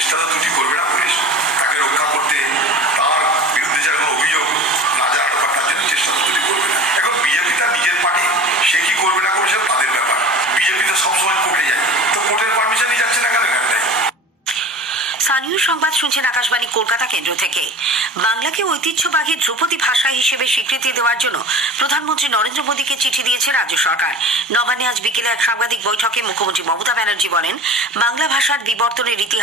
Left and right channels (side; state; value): both; normal; correlation 0.37